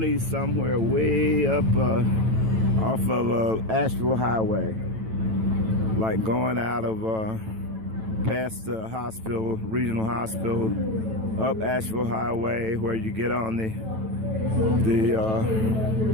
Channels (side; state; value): left; late; 9.1 ms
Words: somewhere way up off of Asheville Highway, like going out of past the hospital, regional hospital, up Asheville Highway, where you get on the